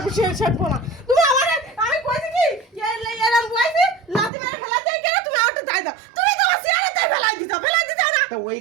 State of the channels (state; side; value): drops out; left; at 4.3 s